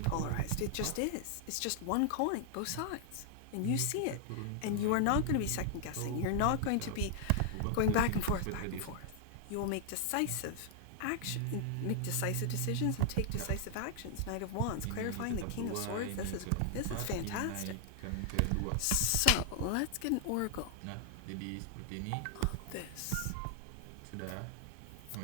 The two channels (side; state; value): both; different; correlation 0.00